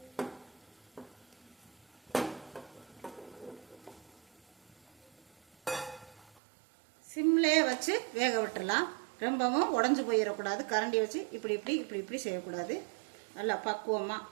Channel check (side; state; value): left; drops out; at 6.3 s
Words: சிம்லேயே வச்சு வேக விட்டுறலாம். ரொம்பவும் உடஞ்சி போயிடக்கூடாது. கரண்டி வச்சு இப்படி செய்யக்கூடாது. நல்லா பக்குவமாக